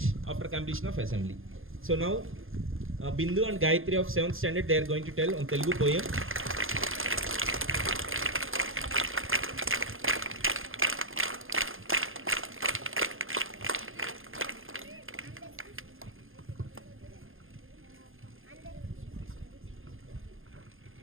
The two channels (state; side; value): late; left; 0.60 ms